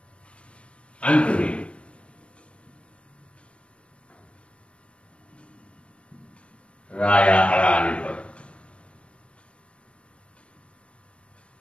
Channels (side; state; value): right; late; 0.059 ms